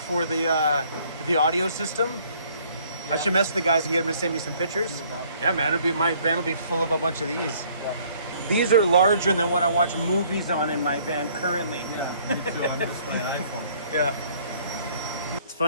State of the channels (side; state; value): both; inverted; correlation -0.60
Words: the audio system. Yeah. I should mess with the guys and get them to send me some pictures. Yeah, man, my van will be full of a bunch of these. Yeah. These are larger than what I watch movies on in my van currently. Yeah, me too. On just my iPhone. Yeah. It's